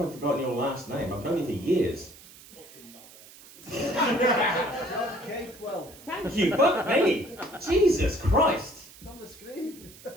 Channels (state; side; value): noise; right; hiss, 20 dB below the sound